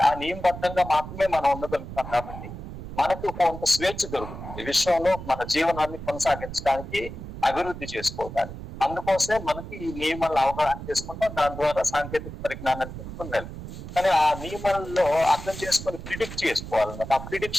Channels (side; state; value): right; noise; rumble, 10 dB below the sound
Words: ఆ నియమబద్ధంగా మాత్రమే మనం ఉండగలుగుతాం. కాబట్టి మనకు కొంత స్వేచ్ఛ దొరుకుతుంది విశ్వంలో మన జీవనాన్ని కొనసాగించడానికి, అభివృద్ధి చేసుకోవడానికి. అందుకోసమే మనకి ఈ నియమాలను అవగాహన చేసుకుంటాం, దాని ద్వారా సాంకేతిక పరిజ్ఞానాన్ని తెలుసుకుని వెళ్తాం. కానీ ఆ నియమాల్లో అర్థం చేసుకొని ప్రిడిక్ట్ చేసుకోవాలన్నమాట. ఆ